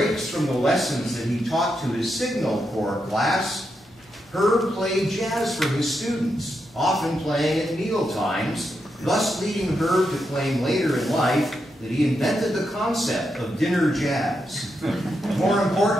from the lessons that he taught to his Signal Corps class, Herb played jazz for his students, often playing at meal times, thus leading Herb to claim later in life that he invented the concept of dinner jazz. More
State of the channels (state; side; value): normal; both; correlation 0.84